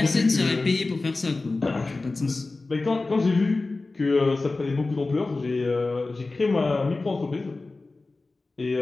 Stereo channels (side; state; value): right; quieter; 3.4 dB